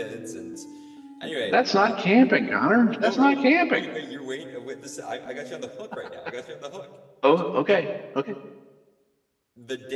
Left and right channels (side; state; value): both; identical; correlation 1.00